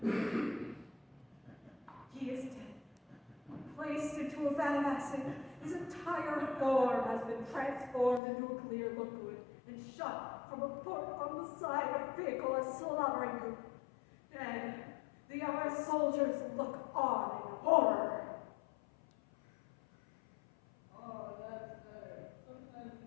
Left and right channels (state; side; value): drops out; right; at 8.2 s